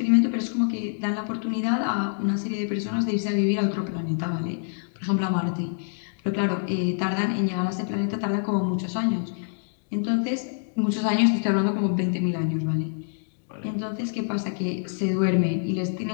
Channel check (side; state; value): right; silent; digital silence